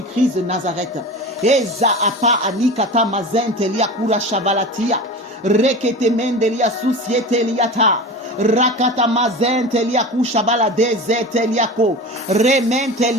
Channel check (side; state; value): both; normal; correlation 0.31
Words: de Nazareth. Eza apa anikata mazentelia kura shavalatia. Rekete mendelia susiete liata. Rakata mazentelia kushabala dezeteliako.